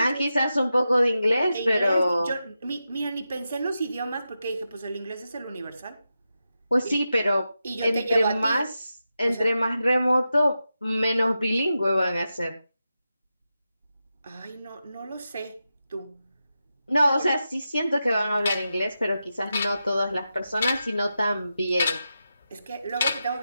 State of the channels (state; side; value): inverted; both; correlation -0.90